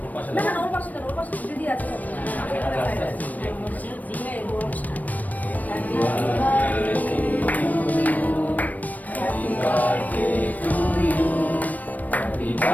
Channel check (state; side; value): late; right; 0.078 ms